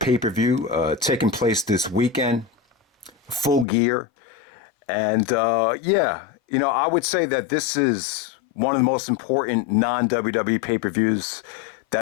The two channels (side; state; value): right; drops out; at 3.7 s